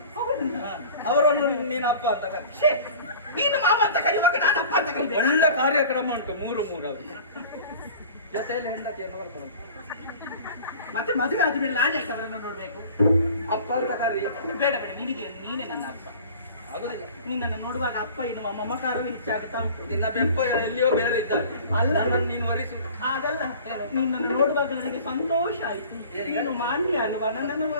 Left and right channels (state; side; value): inverted; both; correlation -0.43